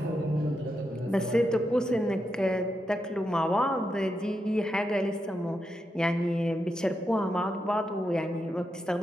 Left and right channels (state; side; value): normal; both; correlation 0.85